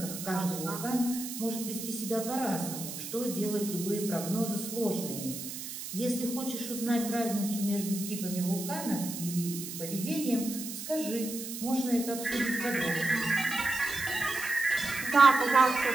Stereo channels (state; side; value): noise; right; hiss, 8 dB below the sound